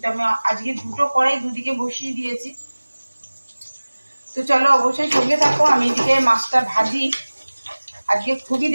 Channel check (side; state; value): both; inverted; correlation -1.00